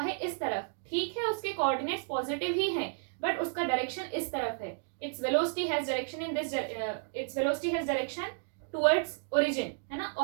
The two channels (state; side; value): silent; left; digital silence